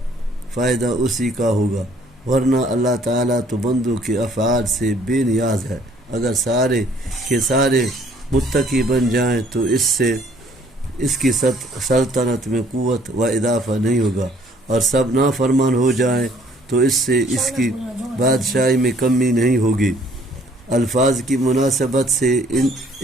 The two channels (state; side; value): normal; both; correlation 0.60